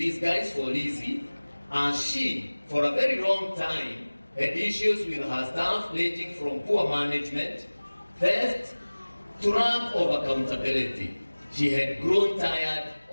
for Lizzie, as she, for a very long time, had issues with her staff ranging from poor management, theft, to lack of accountability. She had grown tired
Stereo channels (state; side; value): inverted; both; correlation -1.00